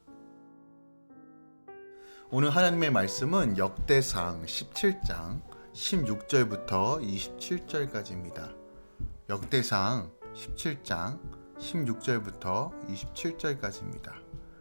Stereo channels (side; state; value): both; inverted; correlation -1.00